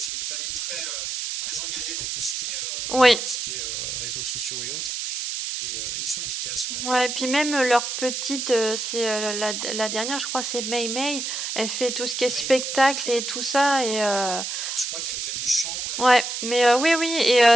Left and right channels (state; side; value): noise; right; hiss, 3 dB below the sound